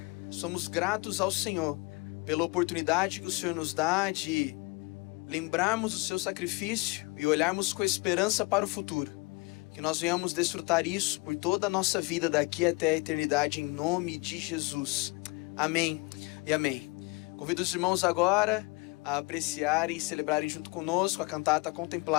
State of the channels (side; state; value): right; quieter; 26.6 dB